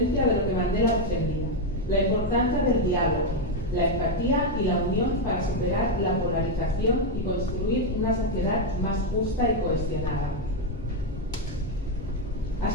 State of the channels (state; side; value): normal; both; correlation 0.04